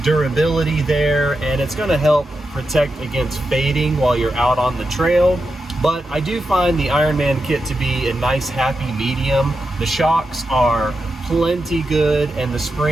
durability there, and it's gonna help protect against fading while you're out on the trail. But I do find the Ironman kit to be a nice happy medium. The shocks are plenty good, and the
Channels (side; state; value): both; normal; correlation 0.88